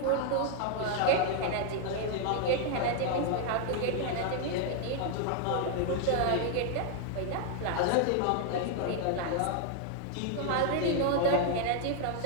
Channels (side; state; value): both; different; correlation 0.00